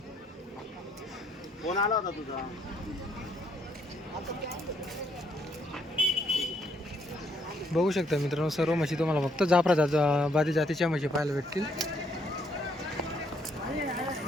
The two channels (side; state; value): both; normal; correlation 0.71